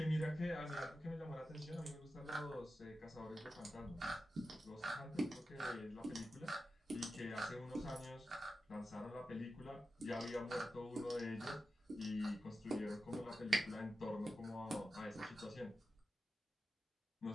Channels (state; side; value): normal; both; correlation 0.91